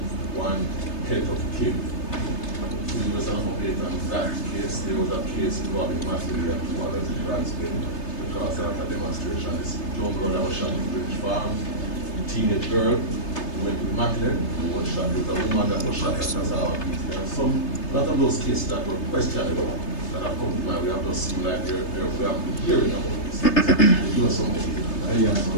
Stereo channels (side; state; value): right; late; 3.3 ms